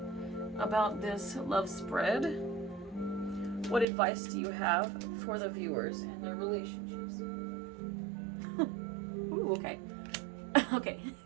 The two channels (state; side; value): drops out; left; at 3.9 s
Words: about this love spread? What advice do you have for the viewers and their relationships? Ooh, okay. Okay,